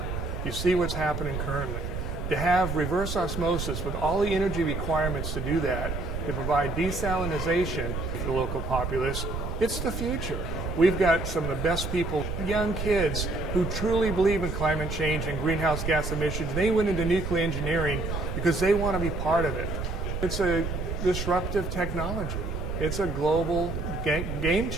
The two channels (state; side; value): noise; right; rumble, 4 dB below the sound